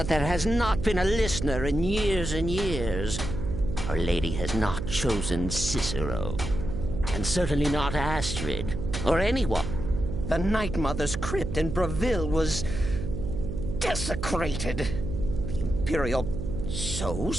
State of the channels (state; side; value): noise; right; hum, 5 dB below the sound